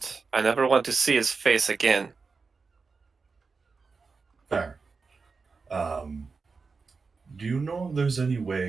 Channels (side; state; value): left; quieter; 4.6 dB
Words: I never want to see his face again. Fair. Do you know if there's any